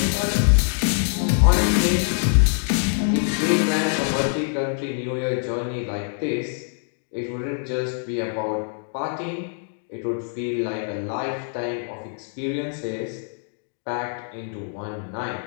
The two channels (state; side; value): silent; right; 62 dB below the other